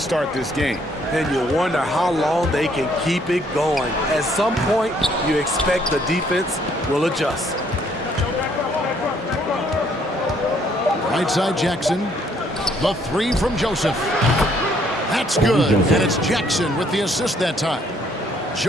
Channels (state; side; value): normal; both; correlation 0.66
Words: this game. And you wonder how long they can keep it going. At some point, you expect the defense will adjust. Right side Jackson. The three from Joseph. That's good. And it's Jackson with the assist that time.